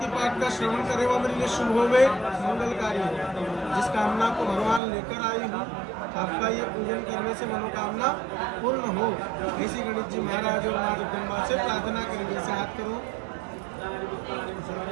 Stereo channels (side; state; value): left; drops out; at 4.8 s